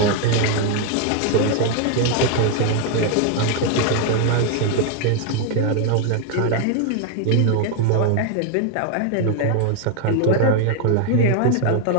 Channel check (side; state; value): both; different; correlation 0.00